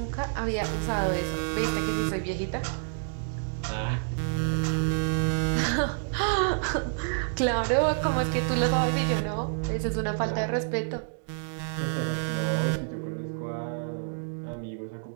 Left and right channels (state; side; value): silent; left; digital silence